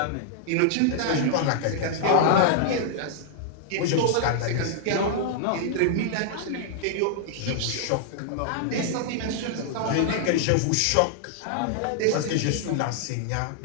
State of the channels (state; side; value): different; both; correlation -0.01